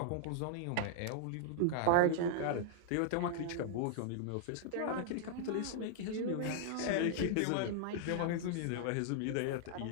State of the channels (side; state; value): both; different; correlation -0.01